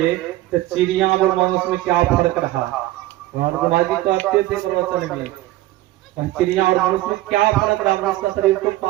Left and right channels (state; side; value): quieter; left; 16.5 dB